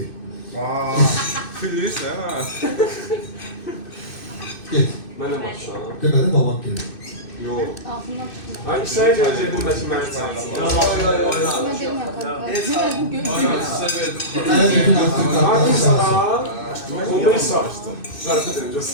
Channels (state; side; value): late; right; 2.6 ms